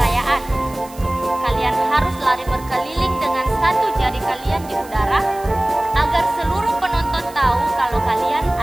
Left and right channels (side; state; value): right; noise; hiss, 21 dB below the sound